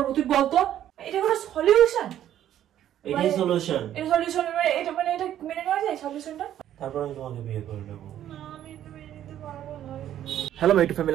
তুই বল তো, এটা কোনো সলিউশন? এটাই সলিউশন। এটা সলিউশন এটা মানে এটা মেনে নেওয়া যায় সলিউশনটা? তারপর আমি তোমাকে বিয়ে করে নেবো। না, আমি এটা মেনে নিতে পারবো না। হ্যালো মাই টু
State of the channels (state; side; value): quieter; left; 11.4 dB